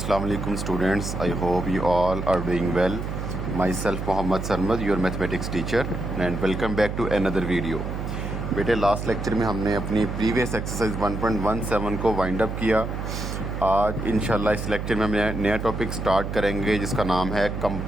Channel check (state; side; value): noise; right; hum, 4 dB below the sound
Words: alaikum students. I hope you all are doing well. Myself Mohammad Sarmad, your mathematics teacher, and welcome back to another video. बेटे last lecture में हमने अपनी previous exercise 1.17 को wind up किया। आज इंशाल्लाह इस lecture में हम नया टॉपिक स्टार्ट करेंगे जिसका नाम है